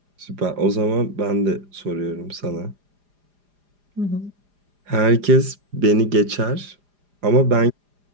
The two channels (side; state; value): left; late; 4.9 ms